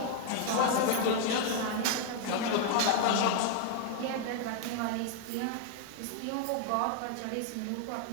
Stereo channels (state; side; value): different; both; correlation 0.00